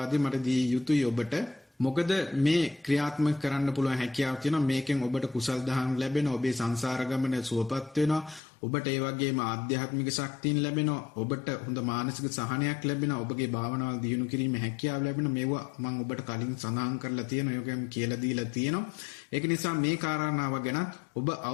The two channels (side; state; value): right; drops out; at 8.4 s